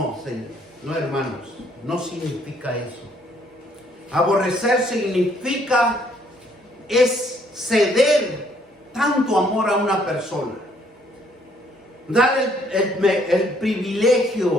Señor, no, hermanos, no significa eso. Aborrecer significa es ceder tanto amor a una persona, dar el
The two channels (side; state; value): both; normal; correlation 0.66